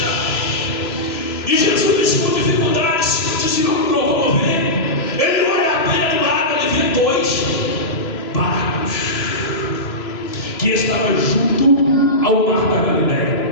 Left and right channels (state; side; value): late; right; 3.0 ms